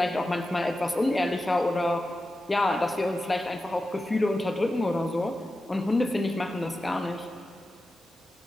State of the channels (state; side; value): normal; both; correlation 0.92